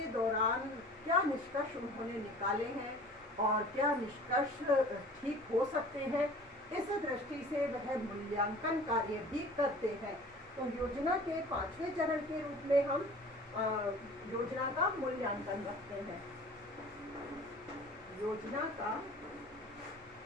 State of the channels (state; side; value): normal; both; correlation 0.45